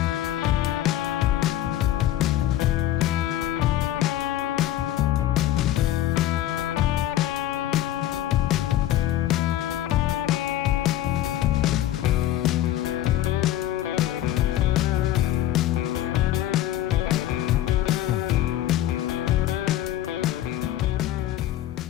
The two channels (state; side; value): quieter; right; 13.2 dB